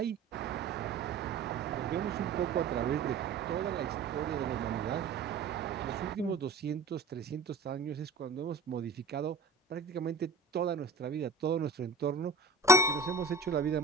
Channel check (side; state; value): left; quieter; 3.8 dB